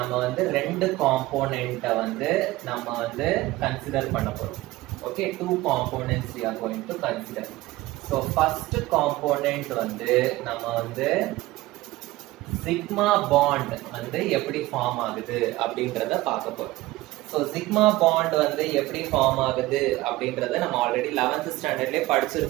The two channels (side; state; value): left; quieter; 18.5 dB